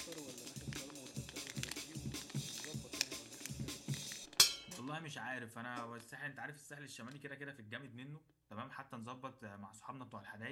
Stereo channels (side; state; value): both; identical; correlation 1.00